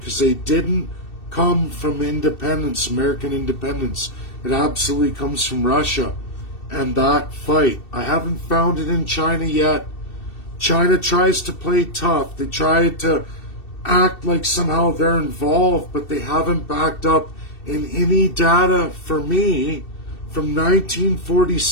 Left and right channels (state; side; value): late; right; 2.7 ms